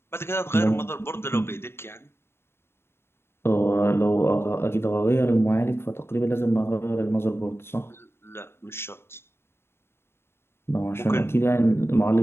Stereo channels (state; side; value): late; right; 0.12 ms